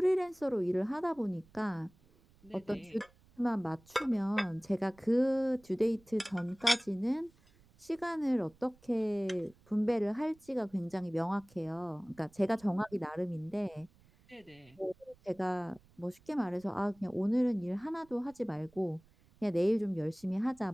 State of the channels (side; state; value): right; noise; rumble, 29 dB below the sound